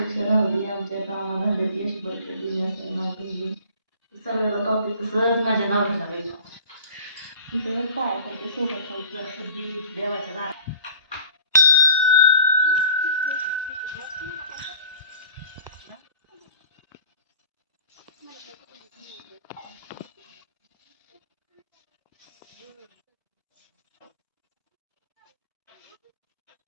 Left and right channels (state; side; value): inverted; both; correlation -0.47